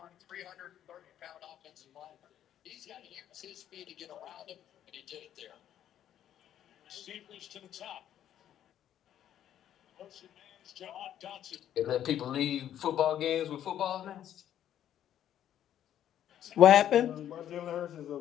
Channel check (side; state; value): right; quieter; 10.9 dB